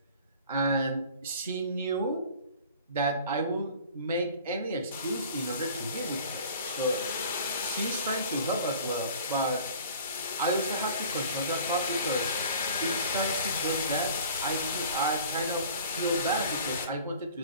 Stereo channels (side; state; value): both; inverted; correlation -0.45